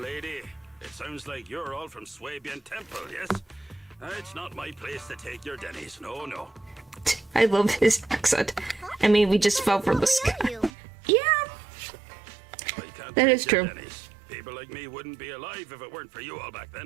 lady, it sounds like you're all from Swabian Temple, yes? It's not my place to take your dennies, no. I love his accent. I mean, we just fell from the What sky. we owe you? Yeah. I can't That take is your true. dennies. People like me wouldn't be alive if it weren't for you all back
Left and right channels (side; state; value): left; drops out; at 10.7 s